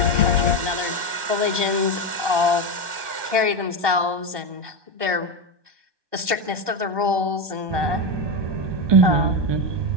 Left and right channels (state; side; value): late; left; 1.2 ms